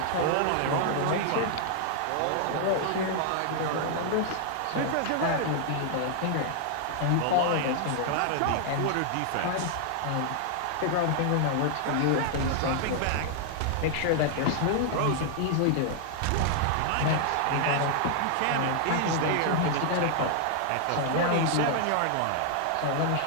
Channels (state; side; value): different; both; correlation -0.01